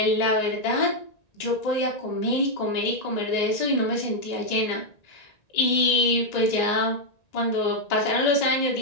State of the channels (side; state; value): right; late; 1.9 ms